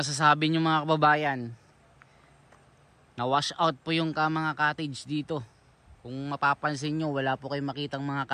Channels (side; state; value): both; identical; correlation 1.00